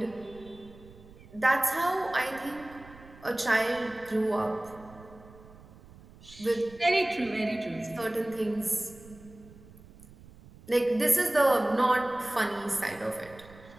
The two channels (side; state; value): right; noise; rumble, 21 dB below the sound